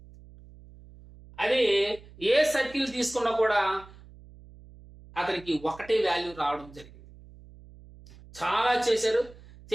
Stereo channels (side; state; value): right; noise; hum, 21 dB below the sound